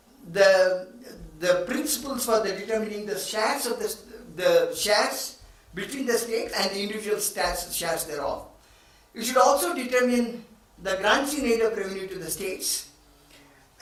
the principles for the determining the shares of the shares between the states and the individual shares thereof. It should also determine the grants in aid of revenue to the states.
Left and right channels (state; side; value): identical; both; correlation 1.00